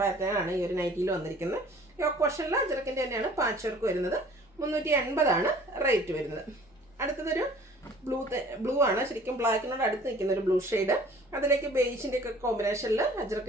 ആണ് ഈ ഒരു നൈറ്റിയിൽ വന്നിരിക്കുന്നത്. യോക്ക് പോർഷനിൽ അഞ്ചരക്കിൻ്റെ തന്നെയാണ് പാച്ച് വർക്ക് വരുന്നത്. 380 റേറ്റ് വരുന്നത്. അടുത്തതൊരു ബ്ലൂ ആണ്. ശരിക്കും ബ്ലാക്കിനോട് അടുത്ത് നിൽക്കുന്ന ഒരു ബ്ലൂ ഷെയ്ഡ്. അതിലേക്ക് ബേജിൻ്റെ ഒക്കെ കോമ്പിനേഷനിൽ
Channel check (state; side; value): normal; both; correlation 0.51